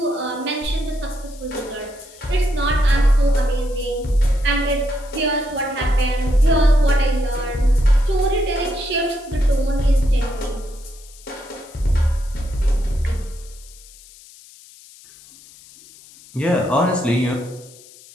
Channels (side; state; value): left; noise; hiss, 22 dB below the sound